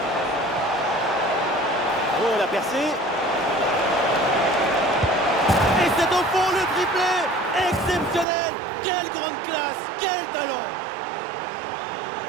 Oh, la percée. Et c'est au fond le triplé. Exceptionnel. Quelle grande classe. Quel talent.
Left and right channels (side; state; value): left; drops out; at 8.2 s